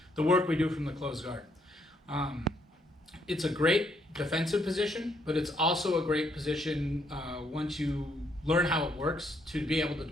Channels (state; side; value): normal; both; correlation 0.71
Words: the work we do from the closed guard. It's a great defensive position, but it's also a great position once you learn how it works to be able to